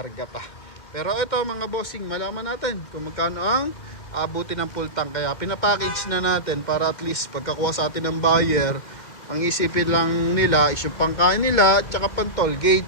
pa. Pero ito mga bossing, malaman natin kung magkano ang abuti ng full tank. Kaya pinapackage na natin para at least pagkakuha sa atin ng buyer, ang isipin lang nila is yung pangkain nila at saka pang toll gate.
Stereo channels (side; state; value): right; late; 2.2 ms